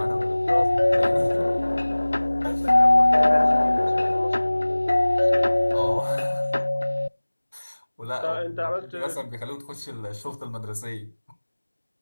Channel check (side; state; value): both; inverted; correlation -1.00